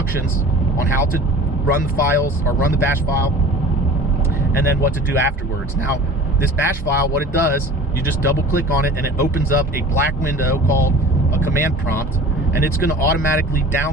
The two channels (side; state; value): both; normal; correlation 0.41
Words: on how to run the files or run the bash file, and then what to do afterwards. Now, this bash file, what it does, you just double click on it and it opens up a black window called a command prompt, and it's going to automatically